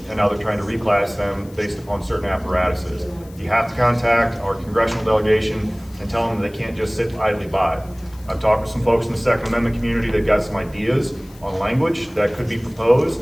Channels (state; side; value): noise; left; hiss, 25 dB below the sound